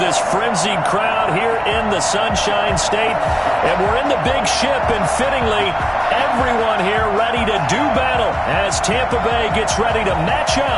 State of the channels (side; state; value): both; identical; correlation 1.00